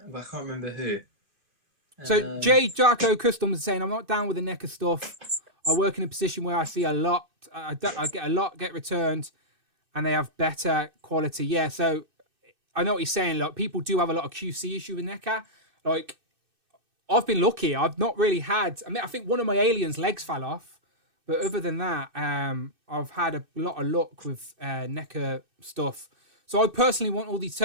But I can't remember who. So J Jarko Customs is saying, I'm not down with the NECA stuff. I work in a position where I see a lot. I get a lot get returned, and they have better quality. Yeah, so I know what he's saying. Like, people do have a lot of QC issue with NECA. Like, I've been lucky. I've not really had. I think one of my aliens' legs fell off, but other than that, I've had a lot of luck with NECA stuff. So I personally want all these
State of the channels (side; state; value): left; late; 2.6 ms